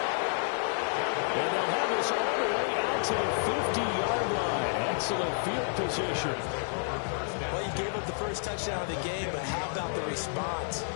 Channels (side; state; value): right; silent; digital silence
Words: And they'll have this all the way out to the 50-yard line. Excellent field position. Well, you gave up the first touchdown of the game, but how about the response?